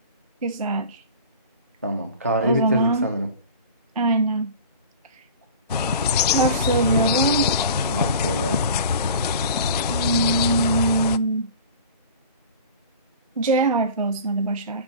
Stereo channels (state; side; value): inverted; both; correlation -0.39